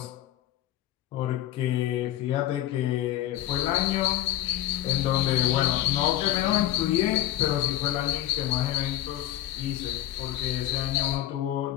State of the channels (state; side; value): quieter; right; 13.3 dB